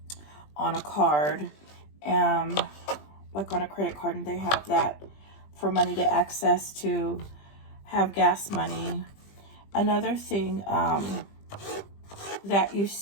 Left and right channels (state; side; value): late; right; 20 ms